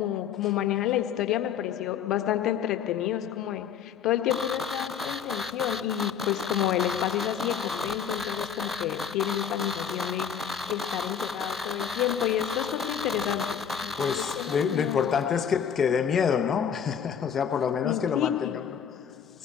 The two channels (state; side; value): quieter; right; 8.0 dB